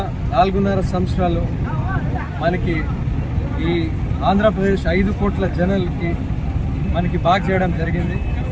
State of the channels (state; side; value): identical; both; correlation 1.00